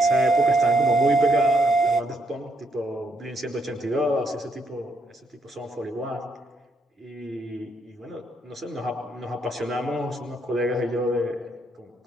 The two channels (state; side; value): normal; both; correlation 0.74